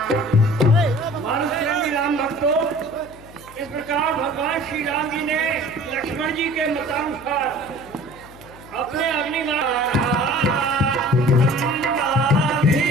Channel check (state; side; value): noise; left; hum, 21 dB below the sound